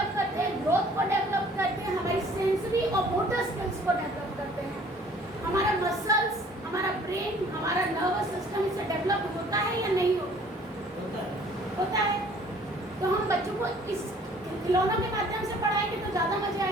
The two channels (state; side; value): normal; both; correlation 0.55